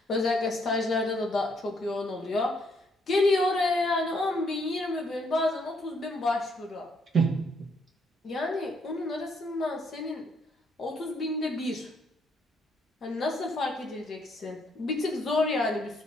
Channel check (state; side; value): normal; both; correlation 0.71